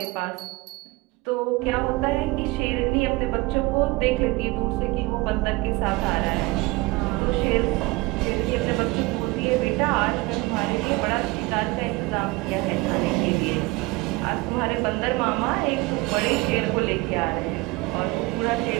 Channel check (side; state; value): left; quieter; 22.6 dB